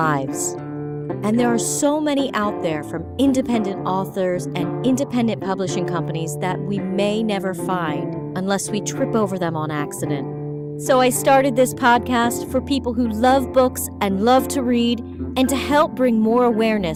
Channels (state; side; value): identical; both; correlation 1.00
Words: and there are so many out there from independent authors and independent publishing companies that we may never find unless we trip over them on accident. So I started this podcast for people who love books and love to read, and to help bring more